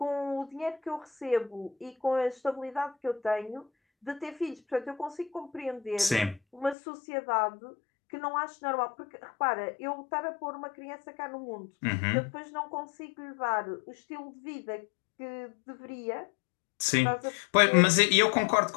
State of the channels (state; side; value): drops out; right; at 6.8 s